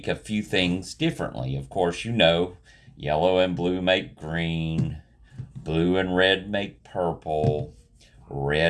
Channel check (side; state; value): both; identical; correlation 1.00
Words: a few things differently. Of course, yellow and blue make green, blue and red make purple,